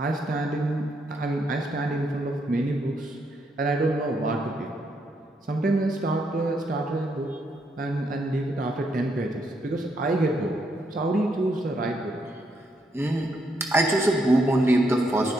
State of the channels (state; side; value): normal; both; correlation 0.76